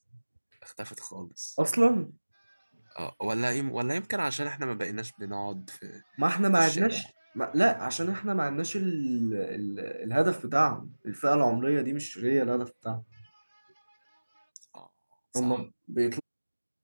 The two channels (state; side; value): inverted; both; correlation -1.00